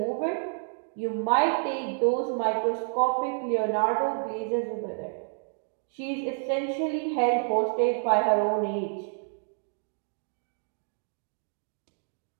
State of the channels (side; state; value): left; silent; digital silence